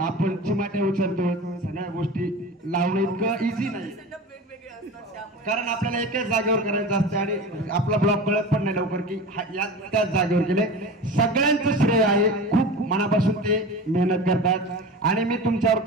चिमाटे उचलतो, सगळ्या गोष्टी लावणं इतकं इझी नाही कारण आपल्याला एकाच जागेवर करायचं असतं आणि आपला ब्लॉग कळत पण नाही लवकर की त्याच जागेवर गेले. सगळ्यांचं श्रेय आहे, खूप मनापासून ते मेहनत करतात आणि मी तुमच्यावर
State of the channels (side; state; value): both; normal; correlation 0.32